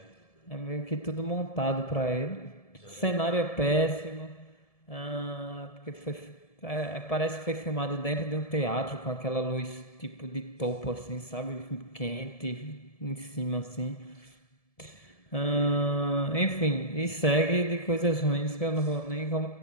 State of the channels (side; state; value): right; late; 1.7 ms